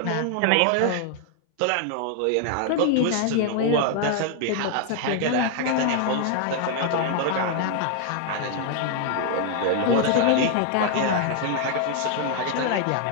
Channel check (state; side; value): different; both; correlation 0.00